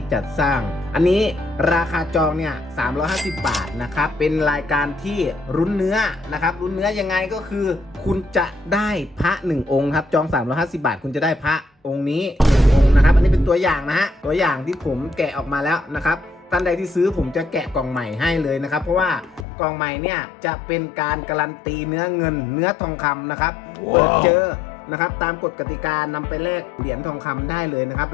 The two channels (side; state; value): right; drops out; at 19.5 s